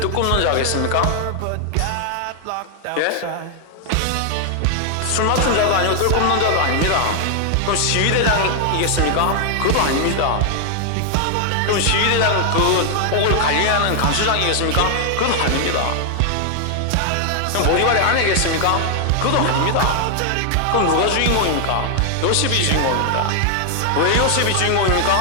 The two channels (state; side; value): different; both; correlation 0.00